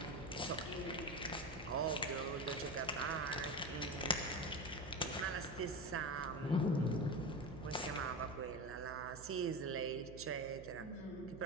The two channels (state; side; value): noise; right; hum, 14 dB below the sound